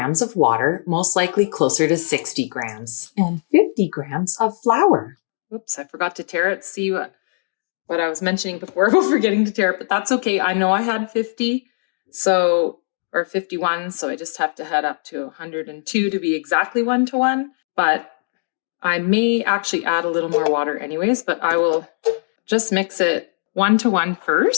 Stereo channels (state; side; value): silent; right; digital silence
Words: of water, most likely closer to 60 grams, and 50 grams of flour. Oops, I forgot to tear it. See what I was mentioning before about forgetting to tear it, but that's okay. I know I had 50, or 51, so I just have to head up to 102 to be exactly 1-to-1, but I may actually add a little more water anyways, but I will just mix it 1-to-1